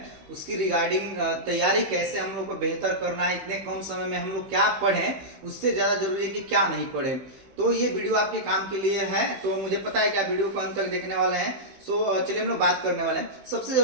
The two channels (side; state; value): left; late; 15 ms